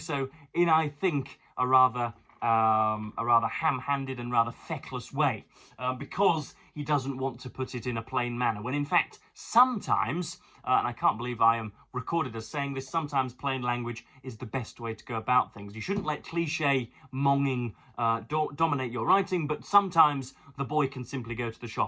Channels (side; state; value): both; identical; correlation 1.00